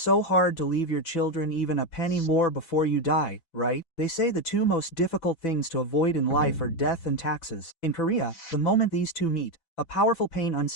hard to leave your children even a penny more before you die, right? They say the two most difficult things to avoid in life are death and taxes. In Korea, the moment these two meet, a powerful pain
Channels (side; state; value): right; late; 6.1 ms